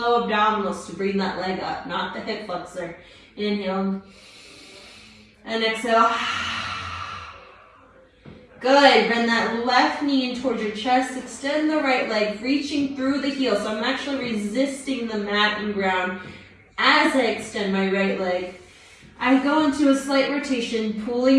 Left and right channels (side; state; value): both; identical; correlation 1.00